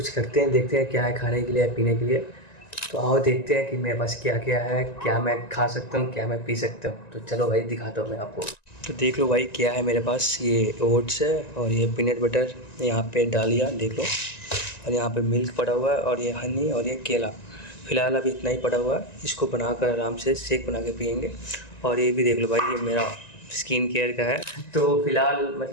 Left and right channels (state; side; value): late; right; 1.9 ms